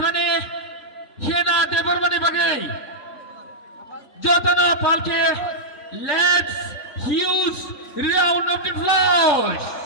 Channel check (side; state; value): right; late; 3.5 ms